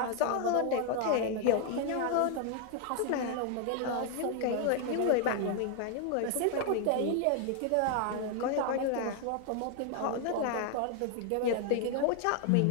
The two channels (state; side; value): different; both; correlation 0.00